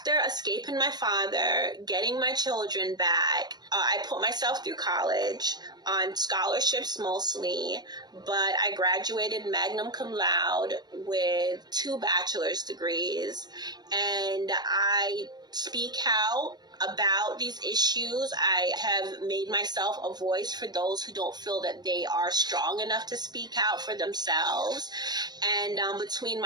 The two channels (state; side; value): late; left; 0.20 ms